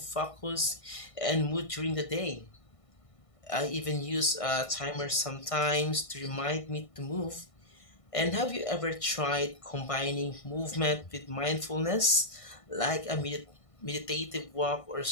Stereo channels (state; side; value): late; right; 1.6 ms